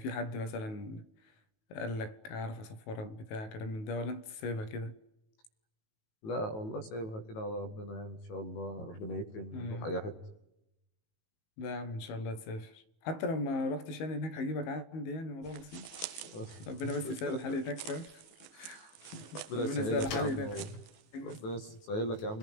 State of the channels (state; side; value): late; right; 18 ms